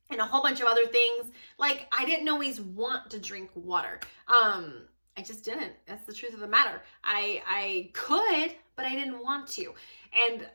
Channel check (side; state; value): both; inverted; correlation -1.00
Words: and a whole bunch of other things, like I didn't always want to drink water. I just didn't. That's the truth of the matter. I could, but I didn't want to. And